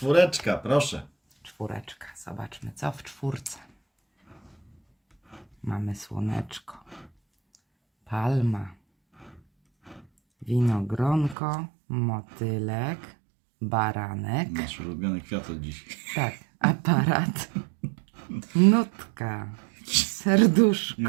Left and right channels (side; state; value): left; drops out; at 11.4 s